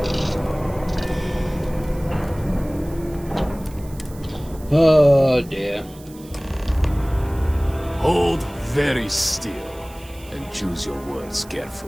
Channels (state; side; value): noise; right; hiss, 22 dB below the sound